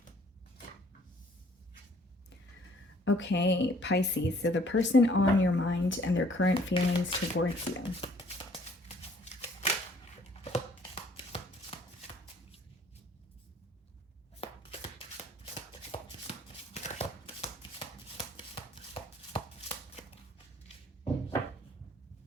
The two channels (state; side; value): normal; both; correlation 0.59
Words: Okay, Pisces, so the person on your mind and their current feelings towards you.